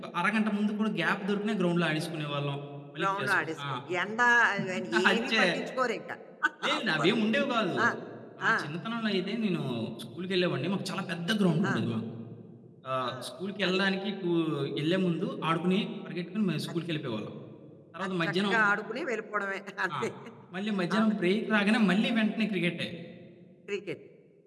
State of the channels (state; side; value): identical; both; correlation 1.00